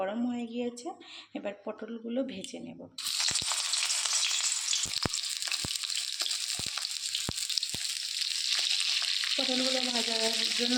হয়ে গিয়েছে। এবার পটলগুলো ভেজে নেব। পটলগুলো ভাজার জন্য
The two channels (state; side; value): identical; both; correlation 1.00